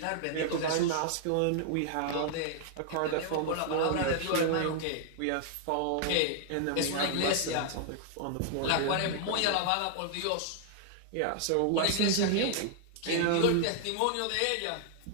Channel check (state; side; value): different; both; correlation 0.00